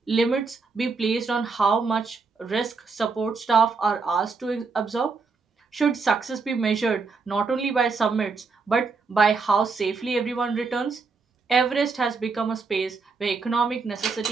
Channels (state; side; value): quieter; left; 4.6 dB